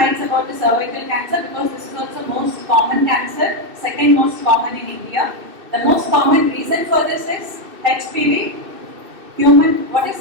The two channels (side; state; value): left; late; 2.6 ms